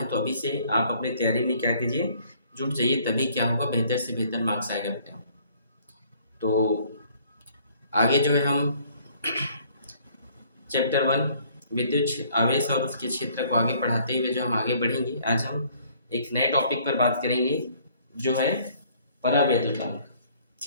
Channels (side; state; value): both; inverted; correlation -0.60